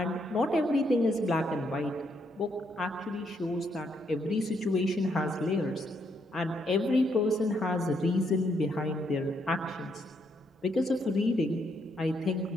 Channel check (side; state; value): both; normal; correlation 0.75